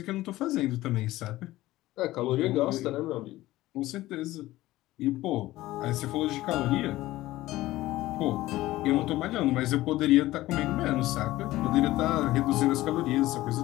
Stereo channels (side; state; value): right; quieter; 16.8 dB